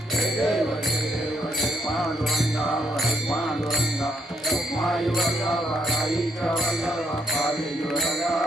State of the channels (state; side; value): normal; both; correlation 0.73